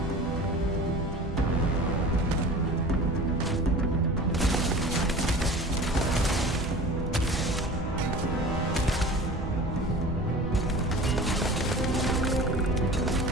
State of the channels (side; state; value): both; normal; correlation 0.39